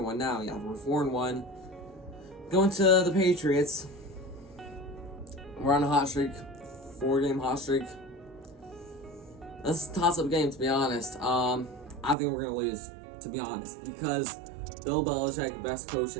now. Yeah, we're 4-1. Going to the Patriots. We're on a hot streak, 4-game hot streak. This is a toss-up game, to be honest. I think we're going to lose, to be honest, because Bill Belichick, best coach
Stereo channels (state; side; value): drops out; left; at 12.2 s